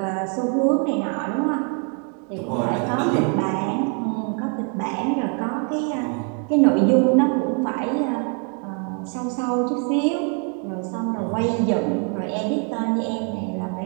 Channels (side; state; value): left; quieter; 37.6 dB